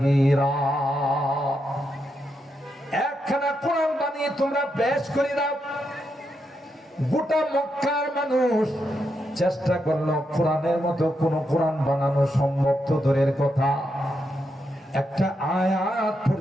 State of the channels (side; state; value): both; normal; correlation 0.83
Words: বানিয়ে তোমরা পেশ করে দাও। গোটা মক্কার মানুষ চেষ্টা করলো কোরআনের মতো কোন কোরআন বানানো সম্ভব তো দূরের কথা, একটা আয়াত